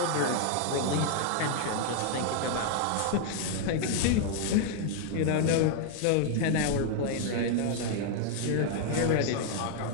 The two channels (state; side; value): different; both; correlation 0.00